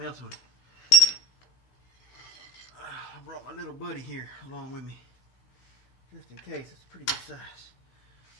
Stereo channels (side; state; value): right; late; 16 ms